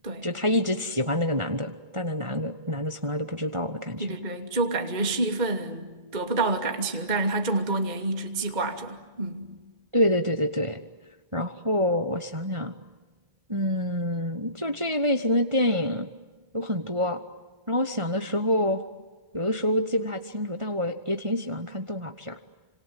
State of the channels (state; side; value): late; left; 2.1 ms